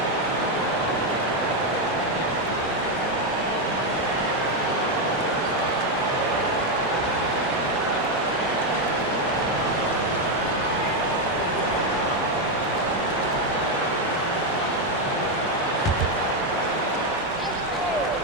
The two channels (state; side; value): normal; both; correlation 0.05